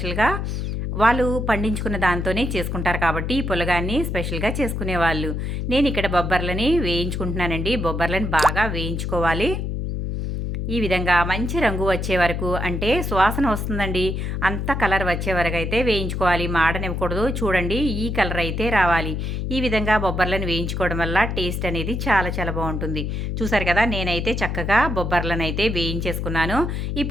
వాళ్ళు పండించుకున్న దాంతోనే చేసుకుంటారు కాబట్టి ఈ పులగాన్ని స్పెషల్గా చేసుకునేవాళ్ళు. నేను ఇక్కడ బొబ్బర్లని వేయించుకుంటున్నానండి. బొబ్బర్లని బాగా వేయించుకోవాలి. ఈ విధంగా మంచి రంగు వచ్చే వరకు, అంటే సువాసన వస్తుందండి, అంత కలర్ వచ్చే వరకు అయితే వేయించుకోవాలి. మాడనివ్వకూడదు. చూడండి, ఈ కలర్ అయితే రావాలి. ఈ విధంగా బొబ్బర్లను వేయించుకోవడం వల్ల టేస్ట్ అనేది చాలా చాలా బాగుంటుంది. చూసారు కదా, నేనైతే చక్కగా బొబ్బర్లను అయితే వేయించేసుకున్నాను.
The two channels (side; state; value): left; noise; hum, 2 dB below the sound